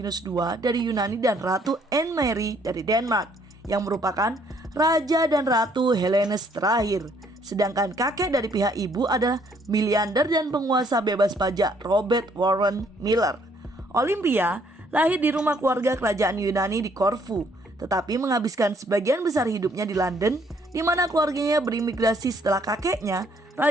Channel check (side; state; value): both; normal; correlation 0.66